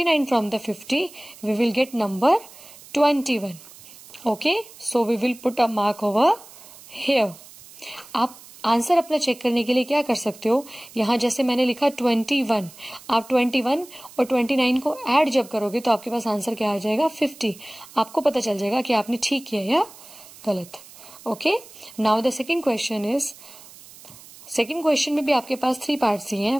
from the 50 we will get number 21. Okay, so we will put a mark over here. आप आंसर अपना चेक करने के लिए क्या कर सकते हो, यहाँ जैसे मैंने लिखा 21, आप 21 और 29 को ऐड जब करोगे तो आपके पास आंसर क्या आ जाएगा 50. आपको पता चल जाएगा कि आपने ठीक किया या गलत. Okay, now the second question is, second question में भी आपके पास 3 पार्ट्स ही हैं.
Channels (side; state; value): right; noise; hiss, 20 dB below the sound